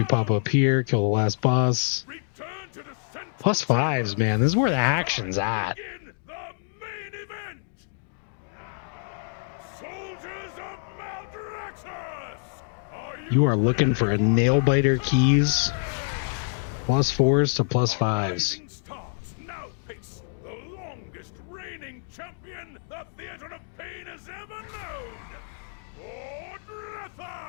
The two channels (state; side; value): silent; right; digital silence